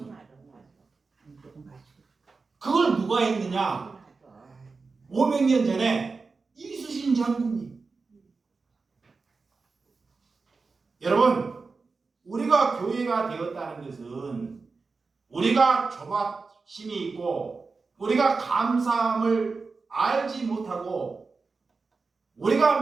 그걸 누가 했느냐? 500년 전에 이수신 장군님. 여러분, 우리가 교회가 되었다는 것은 우리가 조바심이 있고 우리가 감사함을 알지 못하고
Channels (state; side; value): quieter; left; 4.3 dB